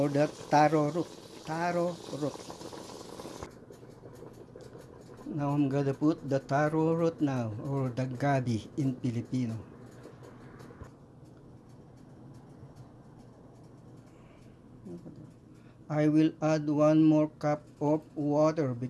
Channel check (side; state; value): both; identical; correlation 1.00